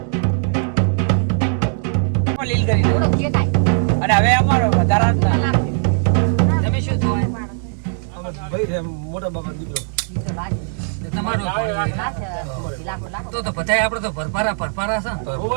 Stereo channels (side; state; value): left; silent; digital silence